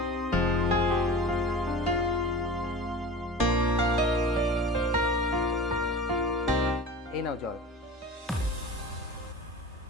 এই নাও জল।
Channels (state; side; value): normal; both; correlation 0.36